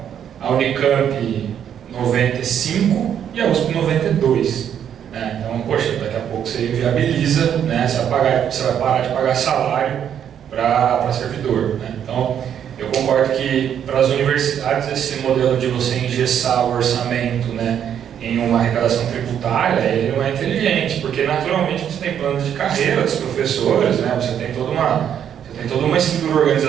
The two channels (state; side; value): quieter; left; 9.1 dB